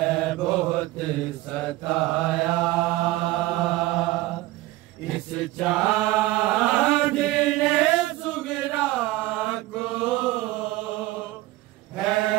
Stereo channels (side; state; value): left; quieter; 17.9 dB